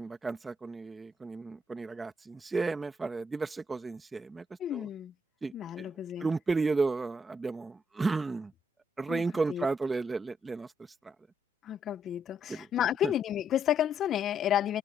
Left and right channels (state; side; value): normal; both; correlation 0.76